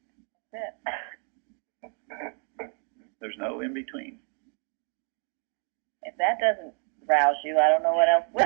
That's it. There's no in between. If that doesn't rouse you, I don't know what else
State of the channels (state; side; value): quieter; left; 39.7 dB